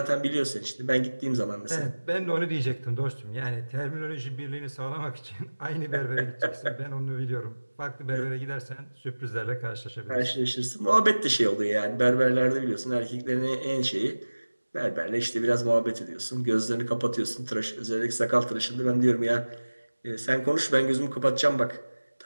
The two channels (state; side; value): inverted; both; correlation -1.00